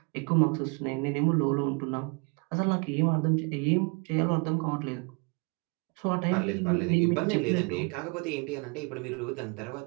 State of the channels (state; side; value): quieter; left; 32.0 dB